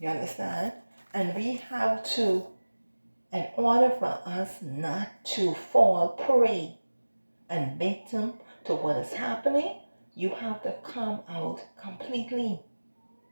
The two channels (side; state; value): both; inverted; correlation -1.00